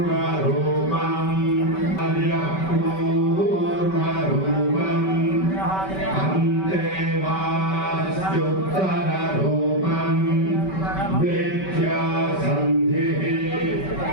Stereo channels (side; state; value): right; late; 5.2 ms